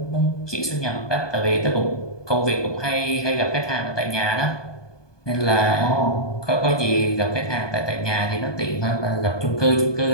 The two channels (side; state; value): right; late; 1.2 ms